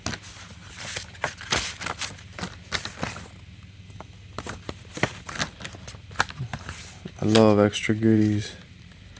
I love extra goodies.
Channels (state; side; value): identical; both; correlation 1.00